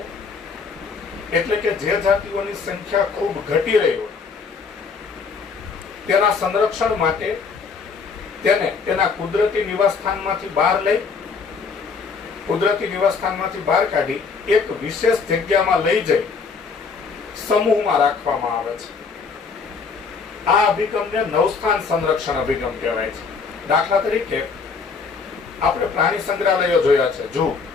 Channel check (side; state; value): right; quieter; 5.1 dB